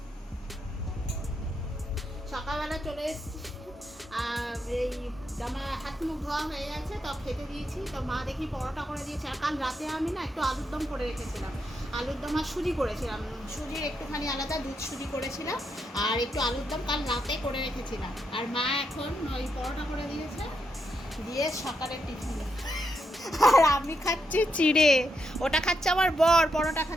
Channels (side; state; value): both; normal; correlation 0.81